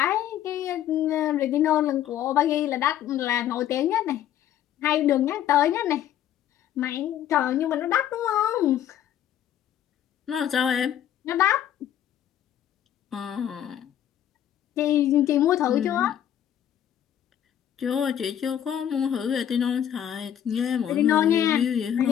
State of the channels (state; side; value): quieter; right; 10.7 dB